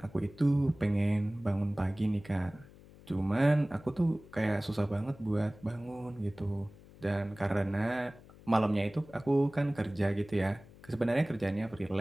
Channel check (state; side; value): noise; left; hum, 22 dB below the sound